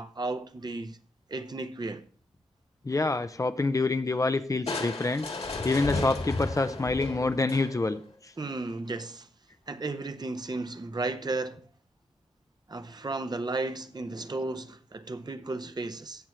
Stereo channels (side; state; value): both; normal; correlation 0.77